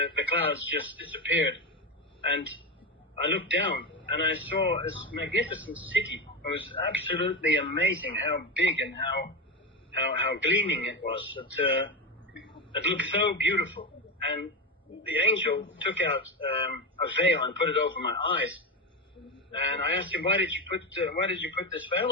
clouds just disappeared. And I looked down, and I saw this magnificent city. It was absolutely amazing how big and how gleaming it was. It looked so beautiful. And the angel took out a veil and put it over my eyes. And I asked him, why did you put this veil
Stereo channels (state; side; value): normal; both; correlation 0.17